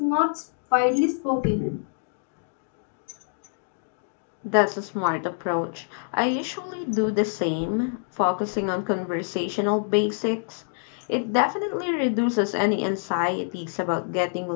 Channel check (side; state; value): right; silent; digital silence